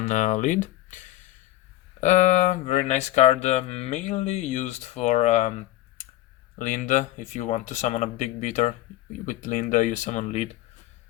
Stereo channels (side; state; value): right; quieter; 15.5 dB